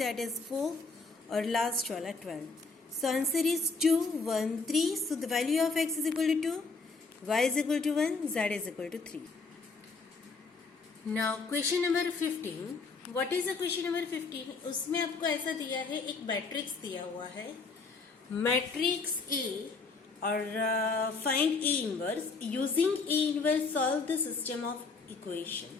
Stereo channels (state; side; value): quieter; right; 4.2 dB